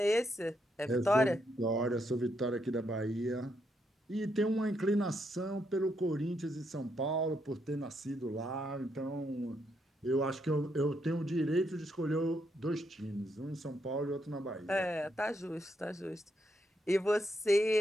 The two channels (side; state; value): both; normal; correlation 0.78